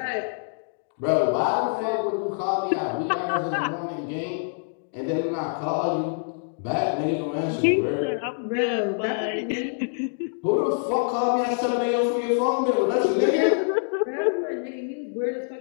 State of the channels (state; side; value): silent; right; digital silence